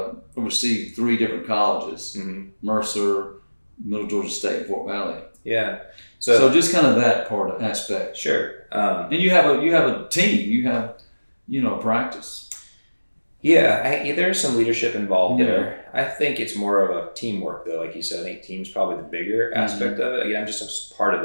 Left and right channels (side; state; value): both; inverted; correlation -1.00